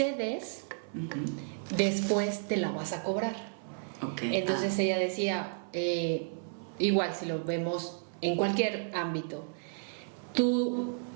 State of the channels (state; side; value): silent; left; 56 dB below the other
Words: después te la vas a cobrar. Okay. Entonces ella decía, igual si lo vemos en cualquier ámbito, tú